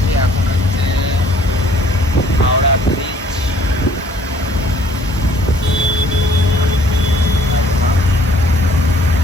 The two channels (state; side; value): normal; both; correlation 0.59